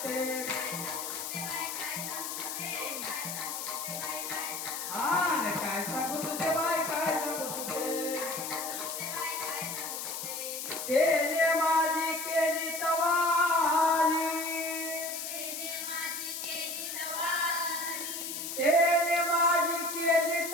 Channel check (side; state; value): left; noise; hiss, 5 dB below the sound